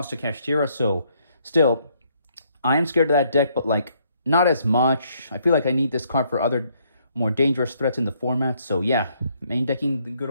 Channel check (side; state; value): both; inverted; correlation -0.70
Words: to Kashtira, so still, I am scared of that deck, but like not as much. I feel like I need this card for other more dangerous threats in the format. So yeah, main decking the good